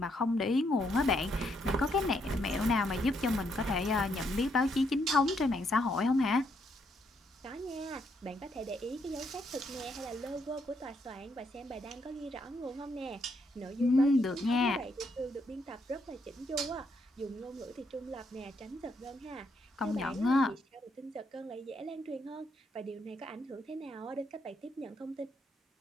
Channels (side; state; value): both; normal; correlation 0.75